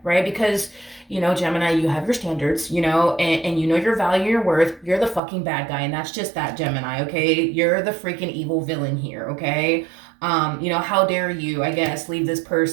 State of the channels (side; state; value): left; drops out; at 5.2 s